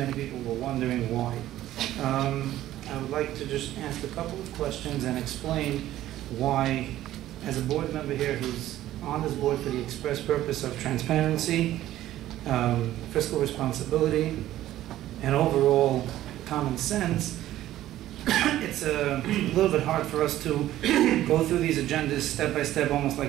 people were wondering why. I would like to just ask a couple of questions and explain why, as a board member here who's on this board for the express purpose of transparency, fiscal responsibility, and overall common sense, it's a little bit hard for us to go through these agendas step by step, almost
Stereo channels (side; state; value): left; quieter; 13.8 dB